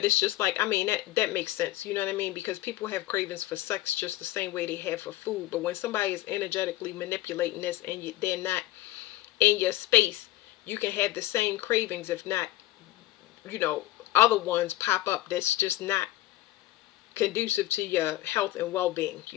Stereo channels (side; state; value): right; quieter; 15.9 dB